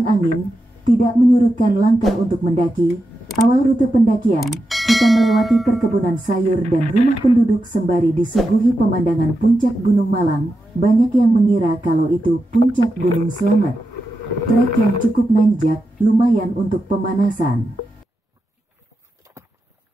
angin, tidak menyurutkan langkah untuk mendaki. Awal rute pendakian, kita melewati perkebunan sayur dan rumah penduduk sembari disuguhi pemandangan puncak Gunung Malang. Banyak yang mengira kalau itu puncak Gunung Slamet. Trek yang cukup nanjak, lumayan untuk pemanasan.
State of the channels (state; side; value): normal; both; correlation 0.88